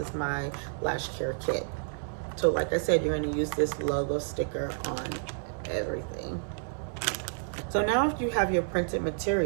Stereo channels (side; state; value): left; silent; digital silence